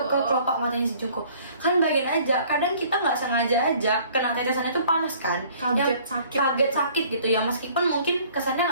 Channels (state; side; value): inverted; both; correlation -0.55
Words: ke kelopak matanya si Junko. Kan bayangin aja, kadang kita nggak sengaja aja kena tetesan itu panas kan, Kaget, sakit. kaget sakit gitu ya, meskipun mungkin